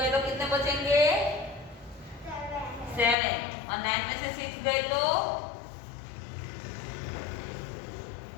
तो कितने बचेंगे 7 और 9 में से 6 गए तो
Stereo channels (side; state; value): right; drops out; at 3.2 s